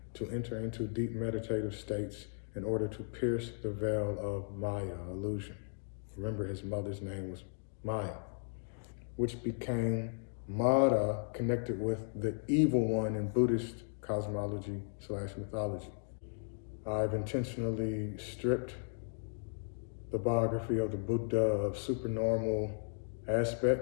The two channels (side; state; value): right; silent; digital silence